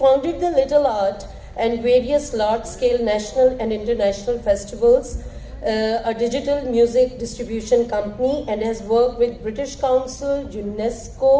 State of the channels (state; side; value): identical; both; correlation 1.00